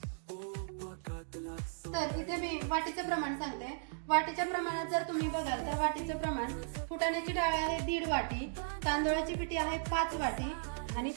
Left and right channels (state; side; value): silent; left; digital silence